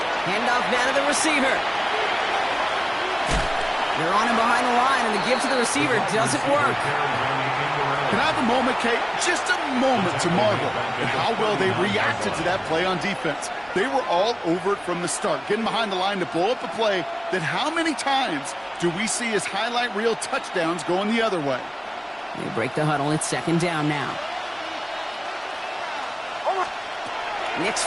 Handoff now to the receiver. They're on him behind the line, and the give to the receiver doesn't work. Can I have a moment, Kate? Just a moment to marvel at how well they reacted to that play on defense. They were all over it from the start, getting behind the line to blow up a play that how many times do we see as highlight reel touchdowns going the other way? They break the huddle. It's second down now. Nix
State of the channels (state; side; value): identical; both; correlation 1.00